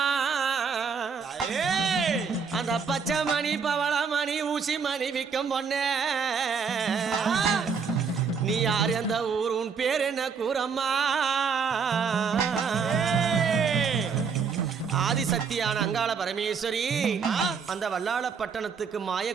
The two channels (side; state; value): left; quieter; 5.9 dB